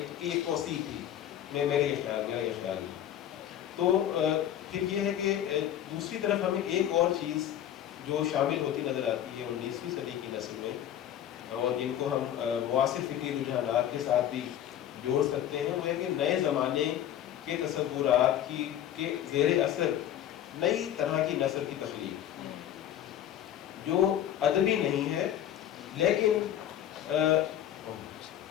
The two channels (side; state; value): right; quieter; 10.9 dB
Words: توسیع تھی, میرا یہ خیال ہے. تو پھر یہ ہے کہ دوسری طرف ہمیں ایک اور چیز جو شامل ہوتی نظر آتی ہے 19ویں صدی کی نسل میں, اور جن کو ہم معاصر فکری رجحانات کے ساتھ بھی جوڑ سکتے ہیں, وہ ہے کہ نئے زمانے کے تصورات کے زیر اثر نئی طرح کی نثر کی تخلیق جو ادبی نہیں ہے لیکن